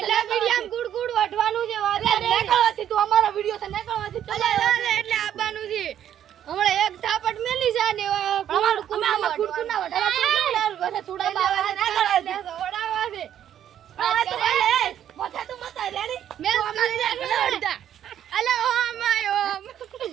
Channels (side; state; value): left; quieter; 10.4 dB